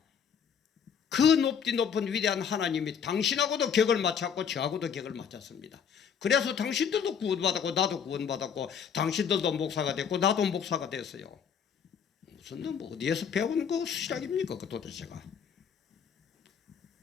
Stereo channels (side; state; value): right; quieter; 7.4 dB